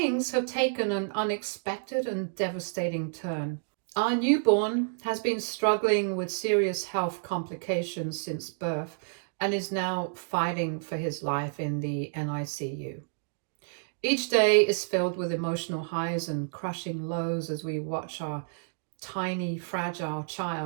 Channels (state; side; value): silent; left; digital silence